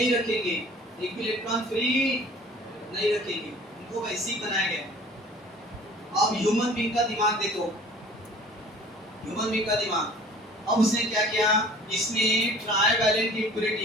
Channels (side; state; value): both; normal; correlation 0.48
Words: रखेंगे, एक भी इलेक्ट्रॉन फ्री नहीं रखेंगे, उनको वैसे ही बनाया गया। अब ह्यूमन बीइंग का दिमाग देखो, ह्यूमन बीइंग का दिमाग, अब उसने क्या किया, इसमें ट्राइवैलेंट